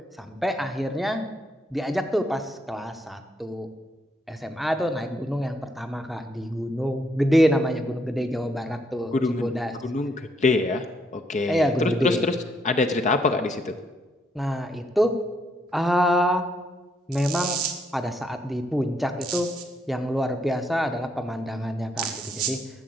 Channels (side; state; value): both; normal; correlation 0.73